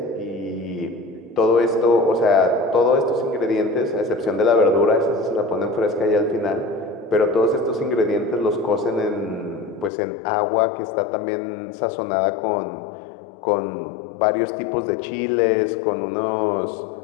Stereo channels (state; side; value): drops out; right; at 9.9 s